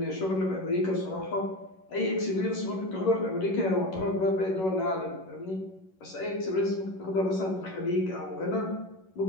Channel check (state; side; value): late; right; 11 ms